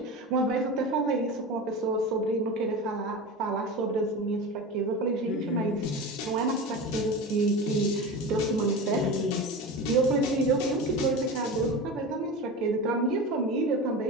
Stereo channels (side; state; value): both; normal; correlation 0.28